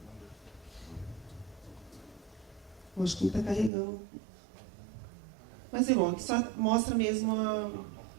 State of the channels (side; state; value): left; drops out; at 3.7 s